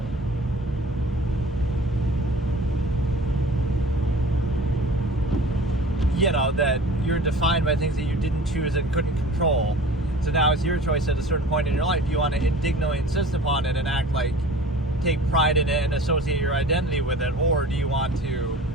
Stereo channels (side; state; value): both; normal; correlation 0.43